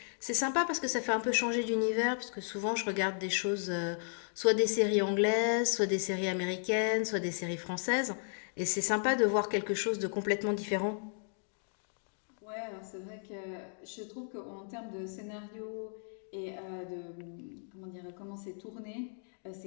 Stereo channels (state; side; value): silent; right; digital silence